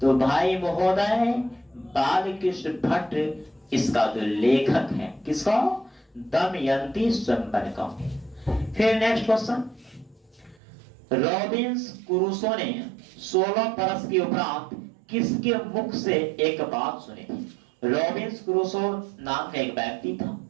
भाई महोदय बालकृष्ण भट्ट इसका जो लेखक है, किसका? दमयंती स्वयंवर का। फिर नेक्स्ट क्वेश्चन, रॉबिन्स क्रूसो ने 16 बरस के उपरांत किसके मुख से एक बात सुनी थी? रॉबिन्स क्रूसो नाम का एक व्यक्ति था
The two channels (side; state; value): left; drops out; at 10.6 s